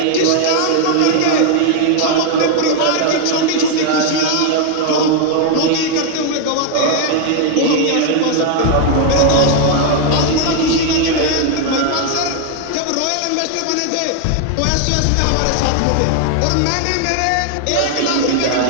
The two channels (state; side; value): different; both; correlation 0.00